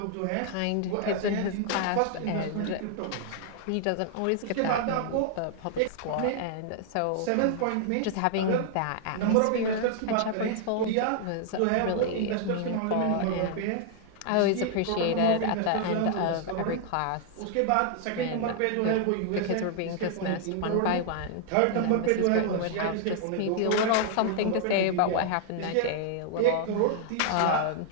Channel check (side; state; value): both; different; correlation -0.01